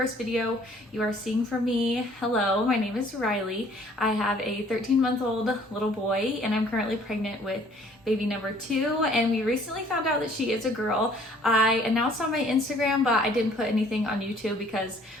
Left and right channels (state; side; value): normal; both; correlation 0.57